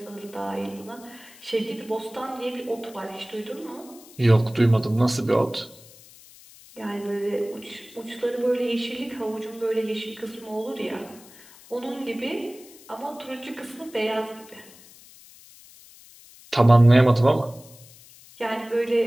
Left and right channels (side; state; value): left; noise; hiss, 22 dB below the sound